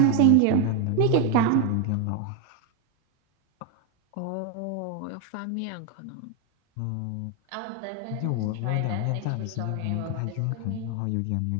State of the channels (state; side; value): different; both; correlation 0.01